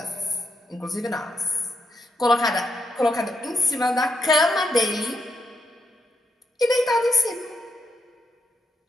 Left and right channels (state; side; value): normal; both; correlation 0.81